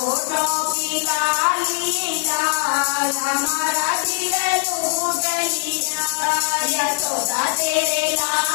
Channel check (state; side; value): silent; right; digital silence